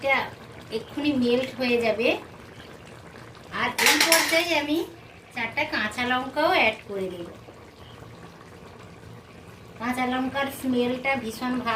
এক্ষুনি মেল্ট হয়ে যাবে। আর এই পর্যায়ে আমি 4টা কাঁচা লঙ্কাও অ্যাড করে দেব। কাঁচা লঙ্কার স্মেলটা ভীষণ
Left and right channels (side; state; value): both; identical; correlation 1.00